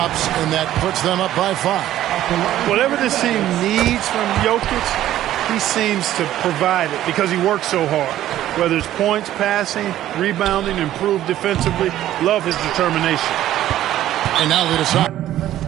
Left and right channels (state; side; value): quieter; left; 13.0 dB